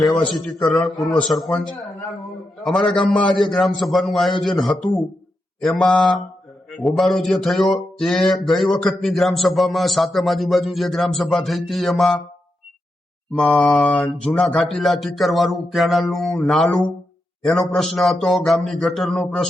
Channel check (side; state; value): both; normal; correlation 0.86